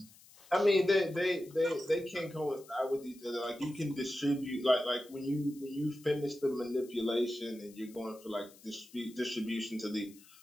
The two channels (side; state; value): left; noise; hiss, 23 dB below the sound